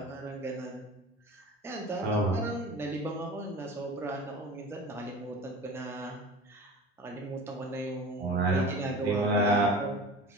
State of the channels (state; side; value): normal; both; correlation 0.37